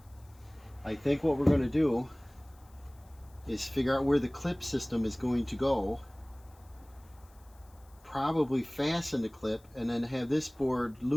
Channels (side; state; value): left; noise; hiss, 30 dB below the sound